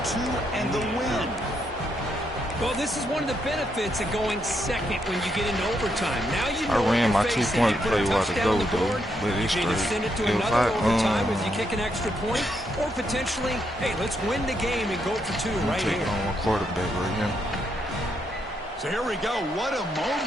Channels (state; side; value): normal; both; correlation 0.78